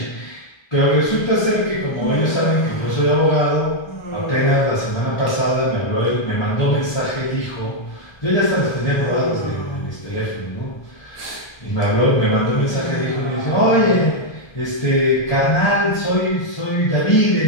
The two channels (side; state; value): right; late; 1.3 ms